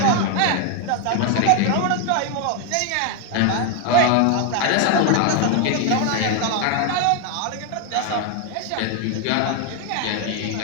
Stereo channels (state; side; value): different; both; correlation 0.00